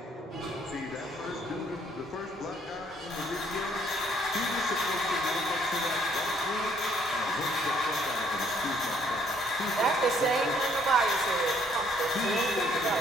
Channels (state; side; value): normal; both; correlation 0.65